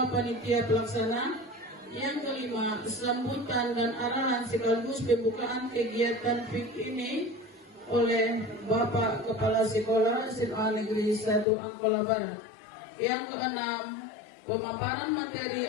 Panitia Pelaksana. Yang kelima, sambutan dan arahan sekaligus pembukaan kegiatan PIK ini oleh Bapak Kepala Sekolah SMA Negeri 1 Angkola Barat. Yang keenam, pemaparan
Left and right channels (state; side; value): drops out; right; at 11.5 s